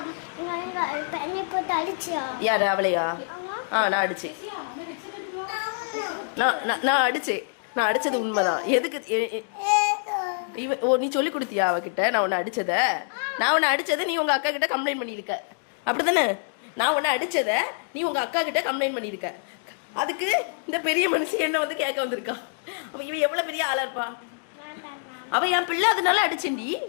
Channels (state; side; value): silent; right; digital silence